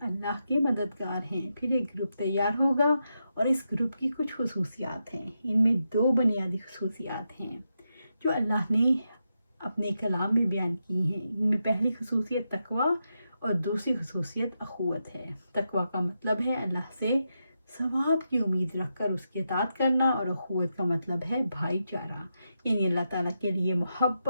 اللہ کے مددگار ہیں۔ پھر ایک گروپ تیار ہوگا اور اس گروپ کی کچھ خصوصیات ہیں۔ ان میں دو بنیادی خصوصیات ہیں جو اللہ نے اپنے کلام میں بیان کی ہیں۔ ان میں پہلی خصوصیت تقوی اور دوسری خصوصیت اخوت ہے۔ تقوی کا مطلب ہے اللہ سے ثواب کی امید رکھ کر اس کی اطاعت کرنا، اور اخوت کا مطلب ہے بھائی چارہ، یعنی اللہ تعالیٰ کے لیے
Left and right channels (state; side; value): inverted; both; correlation -0.86